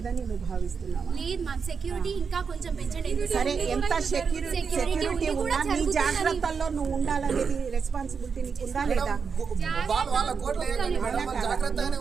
నువ్వు భావిస్తున్నావా? లేదు మ్యామ్, సెక్యూరిటీ ఇంకా కొంచెం పెంచండి. సరే, ఎంత సెక్యూరిటీ ఉన్నా నీ జాగ్రత్తల్లో నువ్వు ఉండాలనేది రెస్పాన్సిబిలిటీ నీకు ఉందా లేదా?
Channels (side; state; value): left; quieter; 5.8 dB